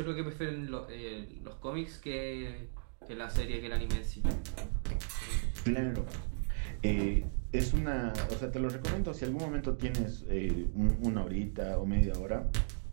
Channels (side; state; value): left; silent; digital silence